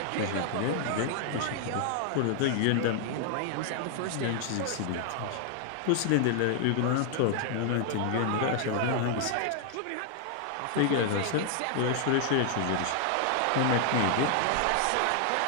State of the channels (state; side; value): different; both; correlation 0.00